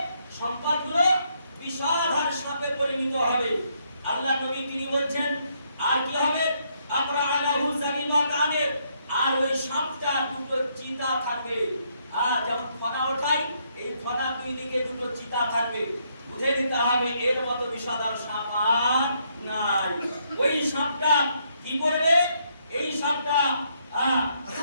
সম্পদগুলো বিষাধার সাপে পরিণত হবে। আল্লাহ নবী তিনি বলছেন, আর কি হবে? আবরাআহু যাবিবাতানে, আর ওই সাপটা দুটো চিতা থাকবে। আর যেমন ফনা ওঠাই, এই ফনা দুই দিকে দুটো চিতা থাকবে। বুঝে নিতে হবে এর মতো বিষাদার সাপ আর নাই। ওই সাপটা কি করবে? এই সাপটা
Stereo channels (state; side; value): inverted; both; correlation -0.74